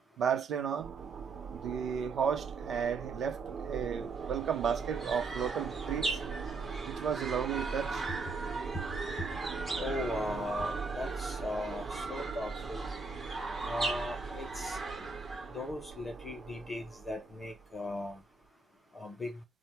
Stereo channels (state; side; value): quieter; left; 4.1 dB